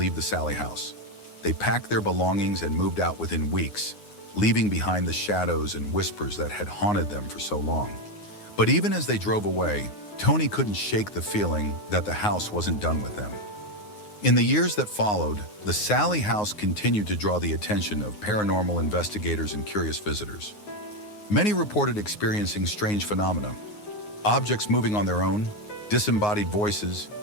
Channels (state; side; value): late; right; 9.6 ms